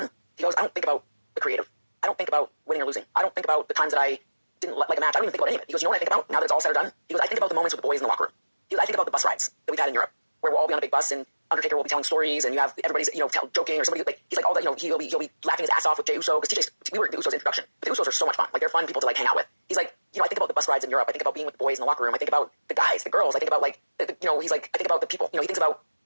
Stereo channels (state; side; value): inverted; both; correlation -1.00